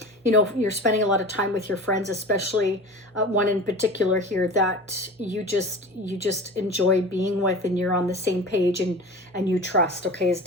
you're spending a lot of time with your friends, especially one in particular here that you just enjoy being with, and you're on the same page and you trust, okay, is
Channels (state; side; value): normal; both; correlation 0.35